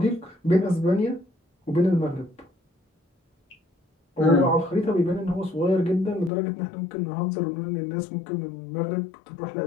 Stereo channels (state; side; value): drops out; right; at 6.3 s